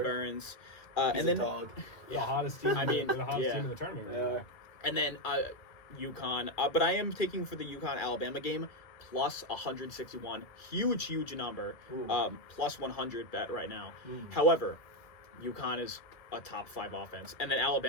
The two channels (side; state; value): right; late; 2.3 ms